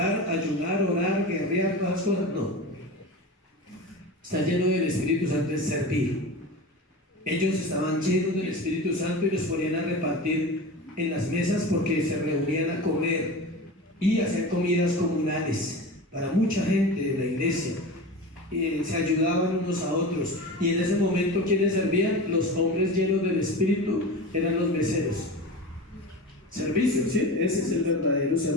ayunar, orar, guerrear, todas las cosas? No. Estar lleno del Espíritu Santo es servir. Ellos estaban llenos del Espíritu Santo y los ponían a repartir en las mesas porque se reunían a comer y hacer comidas comunales para mucha gente de la iglesia. Se ayudaban unos a otros, y en ese momento ¿quiénes servían? Los hombres llenos del Espíritu eran los meseros. Servicio, ¿sí? Ese es el verdadero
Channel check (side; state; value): both; normal; correlation 0.30